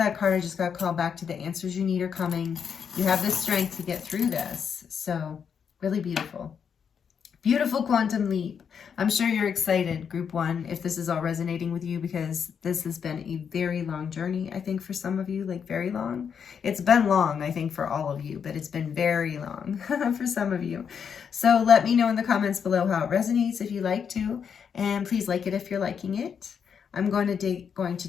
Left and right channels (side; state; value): right; quieter; 7.1 dB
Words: card I just got called back to. The answers you need are coming. You have the strength to get through this. So really beautiful. Beautiful quantum leap. I'm sure you're excited, group 1, if this is all resonating with you, because this has been a very long journey, I think, for some of you, like very long. It's been long, I think, for all of you, but it's been very long for some of you. So let me know in the comments below how it resonates if you like to, and please like it if you're liking it. I'm going to dig